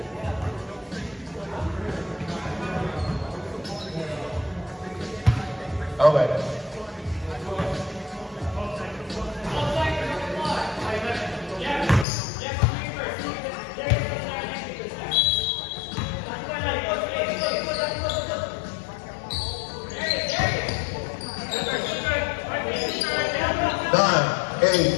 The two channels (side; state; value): right; drops out; at 12.1 s